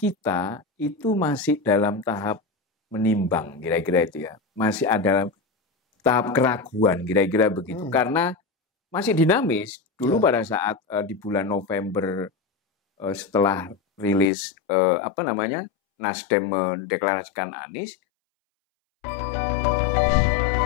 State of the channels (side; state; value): right; drops out; at 14.3 s